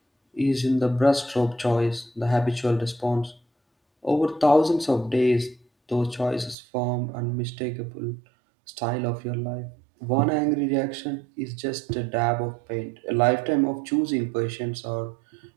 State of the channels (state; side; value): drops out; left; at 6.6 s